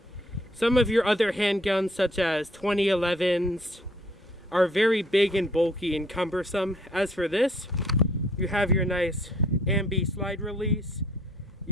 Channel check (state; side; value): normal; both; correlation 0.62